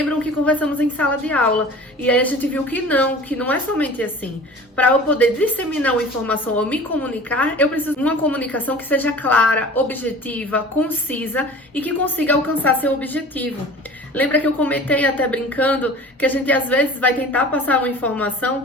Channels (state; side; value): normal; both; correlation 0.41